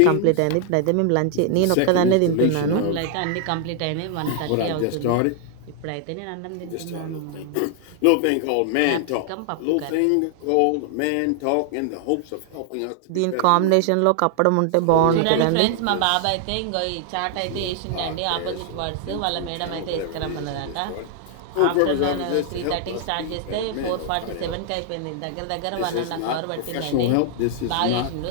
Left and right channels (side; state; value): both; different; correlation 0.00